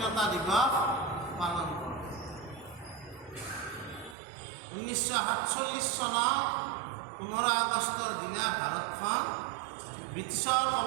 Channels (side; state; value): left; drops out; at 4.2 s